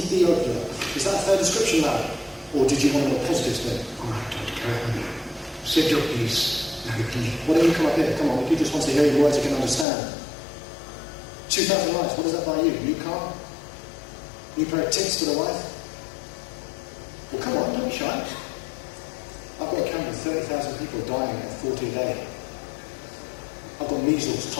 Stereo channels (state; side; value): drops out; right; at 9.9 s